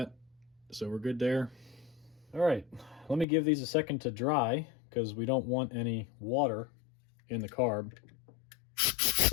so we're good there. All right, let me give these a second to dry because we don't want any water in the carb.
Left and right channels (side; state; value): right; drops out; at 3.2 s